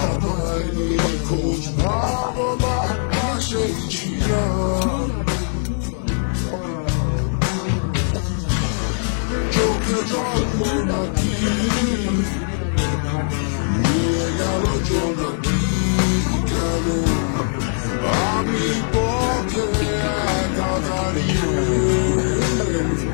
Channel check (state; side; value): silent; right; digital silence